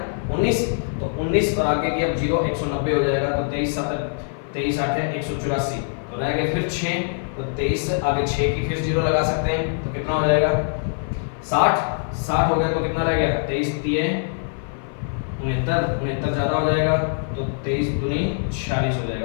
19, तो 19 और आगे की अब जीरो 190 हो जाएगा, तो 23 8 है 184, तो रह गए फिर 6, तो 23 आगे 6 की फिर जीरो लगा सकते हैं, तो कितना हो जाएगा 60 हो गया, तो कितना रह गया 23 दिए 69 ज्यादा हो जाएगा, तो 23 दूनी 46 हो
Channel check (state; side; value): silent; right; 55 dB below the other